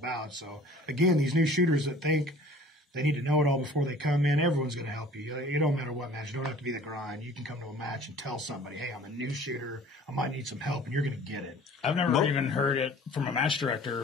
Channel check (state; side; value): normal; both; correlation 0.48